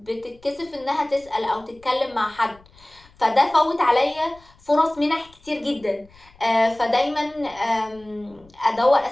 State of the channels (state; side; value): noise; left; rumble, 27 dB below the sound